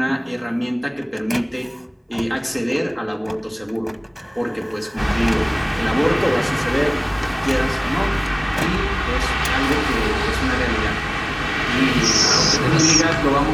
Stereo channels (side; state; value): both; identical; correlation 1.00